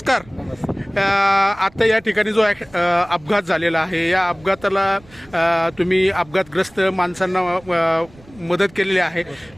आता या ठिकाणी जो अपघात झालेला आहे या अपघाताला तुम्ही अपघातग्रस्त माणसांना मदत केलेली आहे.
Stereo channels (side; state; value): right; noise; rumble, 25 dB below the sound